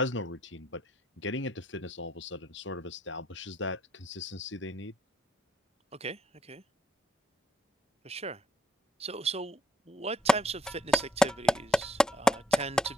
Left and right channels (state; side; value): normal; both; correlation 0.69